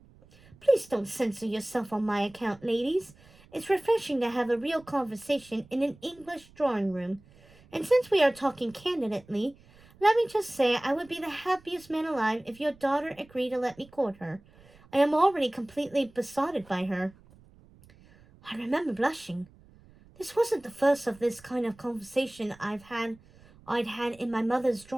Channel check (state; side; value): noise; right; rumble, 26 dB below the sound